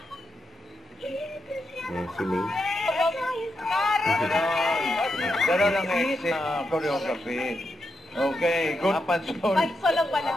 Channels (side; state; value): both; normal; correlation 0.84